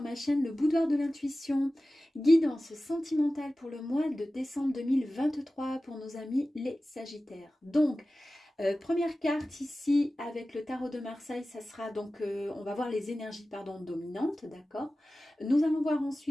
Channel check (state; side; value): normal; both; correlation 0.96